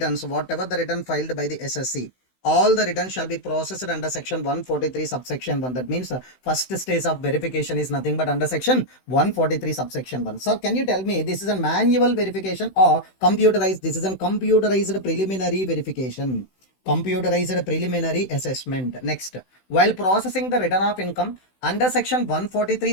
whatever the return filed by the SSC, all the returns shall be processed under section 143 subsection 1. That means first stage of verification is nothing but under section 143 subsection 1. Sir, can you tell me this is a manual verification or computerized? This is a computerized preliminary verification. Computerized preliminary assessment. Next, while processing the return of income under section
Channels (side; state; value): right; late; 16 ms